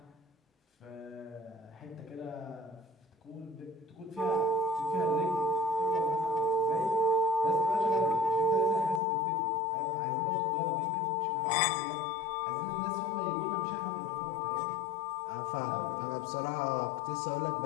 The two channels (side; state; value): right; drops out; at 9.0 s